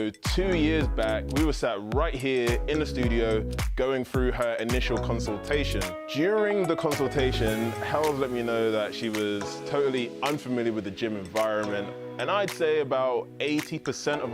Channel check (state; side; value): identical; both; correlation 1.00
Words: 2 years back, we were sat right here in the studio going through her initial consultation. During the consultation, Hel let me know that she was totally unfamiliar with the gym environment. And I'd say about 80% of